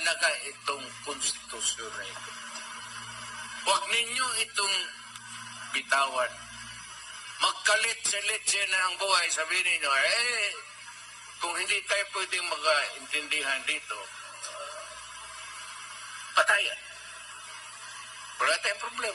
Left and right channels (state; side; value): identical; both; correlation 1.00